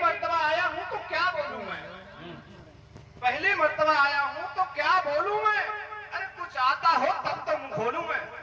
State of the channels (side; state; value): both; identical; correlation 1.00